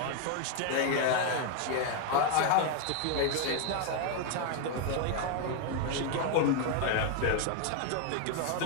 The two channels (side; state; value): both; different; correlation 0.01